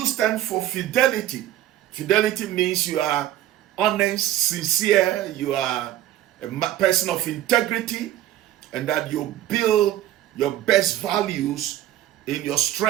stand for fidelity? Fidelity means you are honest, sincere, you are a person of integrity, and that you build your best values in your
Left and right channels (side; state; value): left; quieter; 13.0 dB